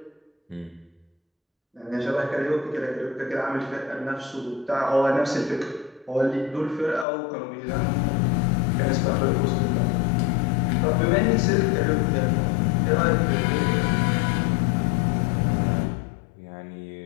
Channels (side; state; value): right; drops out; at 7.1 s